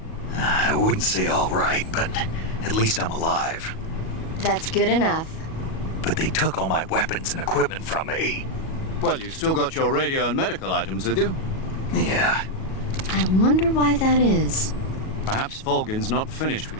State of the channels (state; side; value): late; right; 37 ms